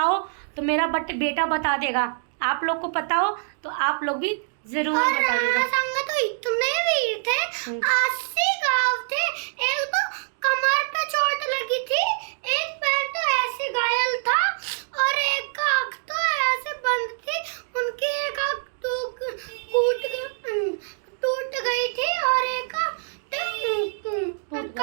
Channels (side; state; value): left; silent; digital silence